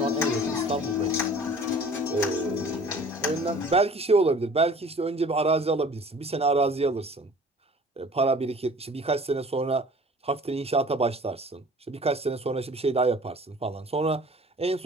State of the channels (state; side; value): normal; both; correlation 0.47